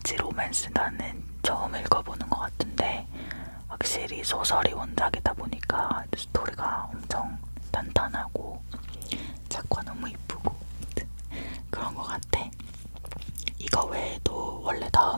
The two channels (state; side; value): inverted; both; correlation -1.00